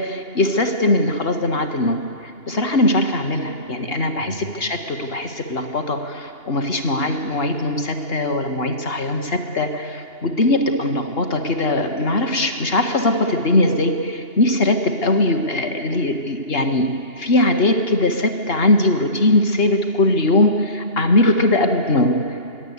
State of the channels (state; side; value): late; right; 2.8 ms